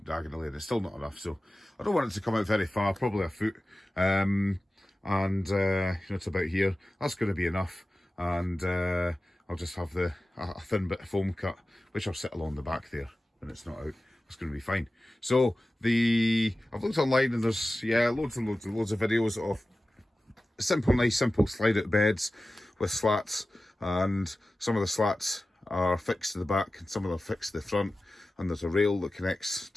diagonally and it's still not enough, so I don't want it to come out very far, probably a foot, and it's about here. That's going to be enough, and I'll just have a thin bit of foam cut, which I'll sit along the back there when it's not out. It's going to be fine. So I've looked online and there's loads and loads of videos of nice simple slide out beds with slats, and some of the slats are fixed to the back and some of them are fixed to the front, and there's a rail that connects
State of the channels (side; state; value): both; normal; correlation 0.95